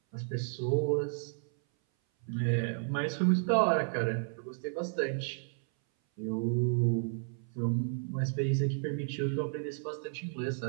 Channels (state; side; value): silent; left; 56 dB below the other